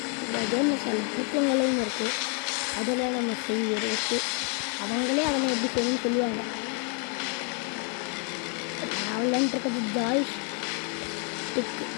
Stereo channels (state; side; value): quieter; right; 39.3 dB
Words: இந்த கேமில் சில புத்தகங்களையும் இருக்குது. அதெல்லாம் நம்ம செய்யறது அவங்களே அவங்க எப்படி செய்யணும்னு சொல்லுவாங்க. நான் விளையாண்டுருக்கிறது ஜாய் ஸ்டிக்கு,